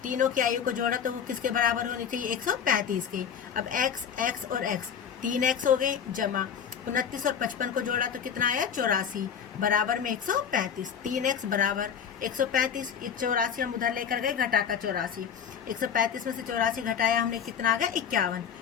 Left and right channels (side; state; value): right; quieter; 7.8 dB